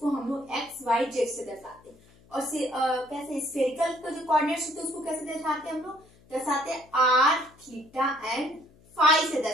हम लोग एक्स वाई जेड से दर्शाते हैं। और कैसे स्फेरिकल का जो कोऑर्डिनेट्स होते हैं उसको कैसे दर्शाते हैं, हम लोग दर्शाते हैं आर, थीटा एंड फाई से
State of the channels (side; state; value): left; noise; hum, 28 dB below the sound